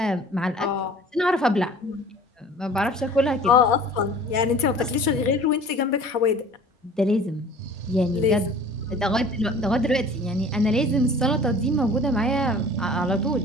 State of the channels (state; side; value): normal; both; correlation 0.46